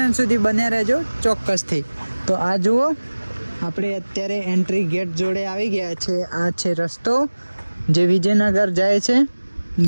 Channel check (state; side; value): inverted; both; correlation -1.00